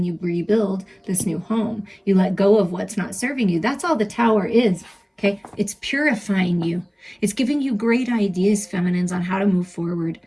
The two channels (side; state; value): both; identical; correlation 1.00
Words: you rebuild this new home. You let go of what's not serving you. That's all the Tower is. Okay, it's purifying you. It's giving you great ideas, feminines, on how to move forward,